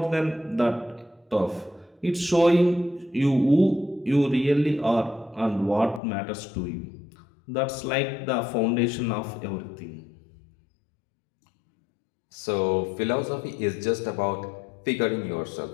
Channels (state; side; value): drops out; right; at 6.0 s